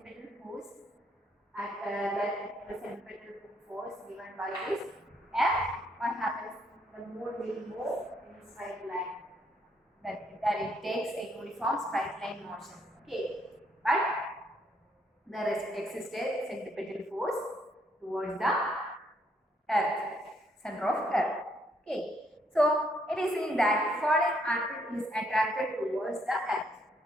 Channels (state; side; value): normal; both; correlation 0.71